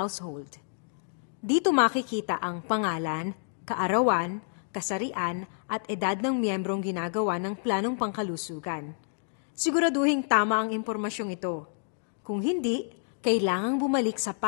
Dito makikita ang pangalan, kaarawan, kasarian at edad ng miyembrong ginagawa ng planong pangkalusugan. Siguraduhin tama ang impormasyong ito. Kung hindi, kailangang bumalik sa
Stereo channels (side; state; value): right; silent; digital silence